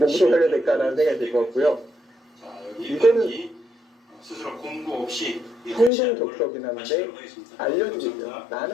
살려야 될까라는 생각이 들 것 같고요. 자, 여기 이거는 경기 스스로 공고 없이 성동적석이긴 한데 알려주고 있어요.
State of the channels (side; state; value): right; drops out; at 5.9 s